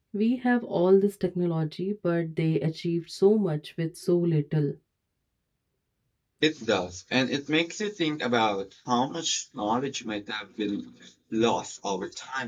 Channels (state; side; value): identical; both; correlation 1.00